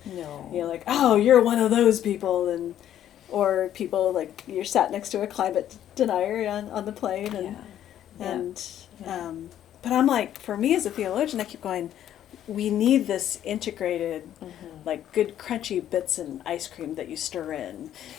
No. Like, oh, you're one of those people, or people like you're sat next to a climate denier on the plane, but I'm like, for me as a theologian, I keep going, we need this integrated like good crunchy bits in ice cream that you stir in.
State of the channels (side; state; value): right; quieter; 11.1 dB